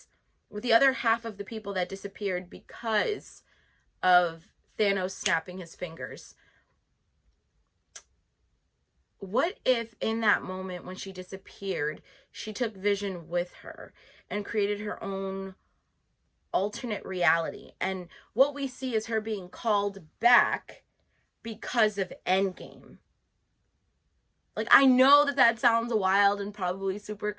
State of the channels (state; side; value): identical; both; correlation 1.00